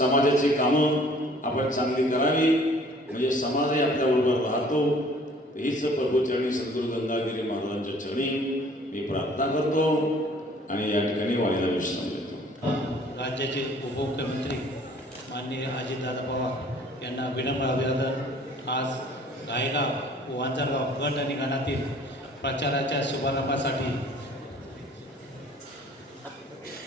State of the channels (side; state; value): both; normal; correlation 0.54